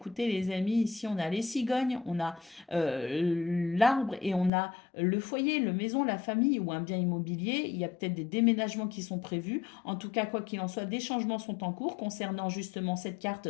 les amis, ici on a les cigognes, on a l'arbre et on a le foyer, le maison, la famille ou un bien immobilier. Il y a peut-être des déménagements qui sont prévus. En tout cas, quoi qu'il en soit, des changements sont en cours concernant justement cette carte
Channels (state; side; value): drops out; right; at 4.5 s